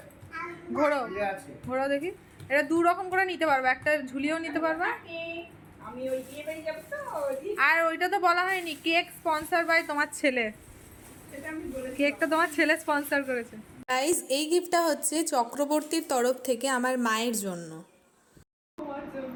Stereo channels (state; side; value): identical; both; correlation 1.00